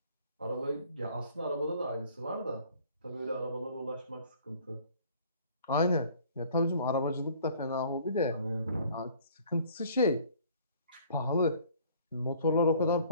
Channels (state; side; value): inverted; both; correlation -0.54